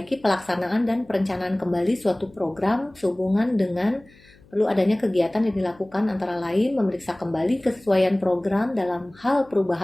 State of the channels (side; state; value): left; noise; hum, 27 dB below the sound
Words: pelaksanaan dan perencanaan kembali suatu program sehubungan dengan perlu adanya kegiatan yang dilakukan, antara lain memeriksa kembali kesesuaian program dalam hal